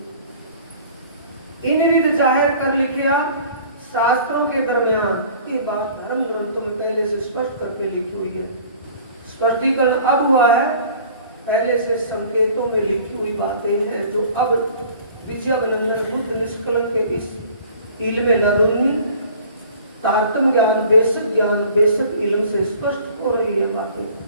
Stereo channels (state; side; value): inverted; both; correlation -0.49